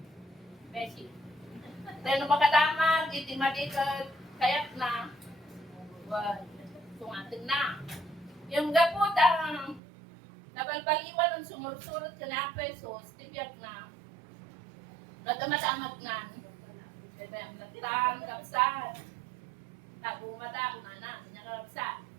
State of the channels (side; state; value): left; drops out; at 9.8 s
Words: Beshi. Dahil numakadamag, hindi madikad, kayak na. Sungatin na. Yung gapot ang nabalbaliwan ng sumursurot ka na pesos, tibiyak na. Nadamadamag na. Diba yung lagtan, kapsat. Tago mata, unana, niya kapsat.